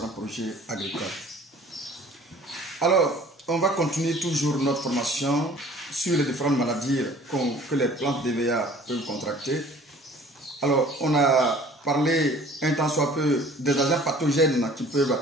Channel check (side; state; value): both; normal; correlation 0.50